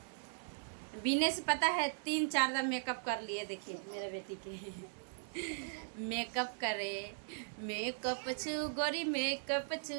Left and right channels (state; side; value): silent; left; digital silence